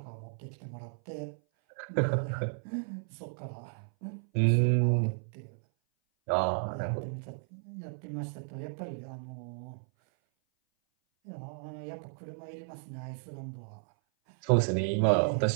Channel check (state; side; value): silent; left; 56 dB below the other